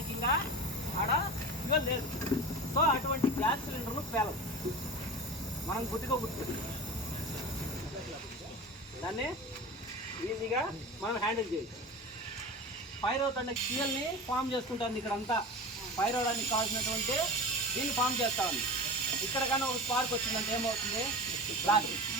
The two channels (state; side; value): normal; both; correlation 0.31